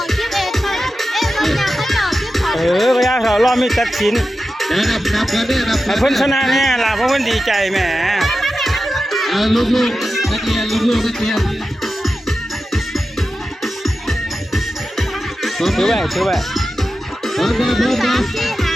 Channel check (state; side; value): normal; both; correlation 0.92